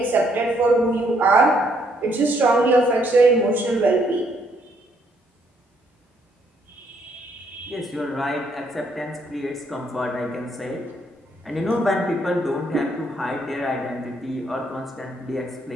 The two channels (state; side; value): normal; both; correlation 0.70